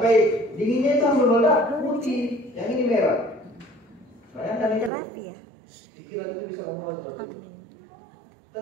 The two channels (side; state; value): left; drops out; at 4.9 s